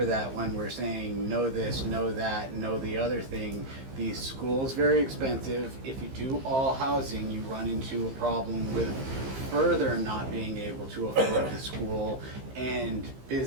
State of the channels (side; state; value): left; late; 15 ms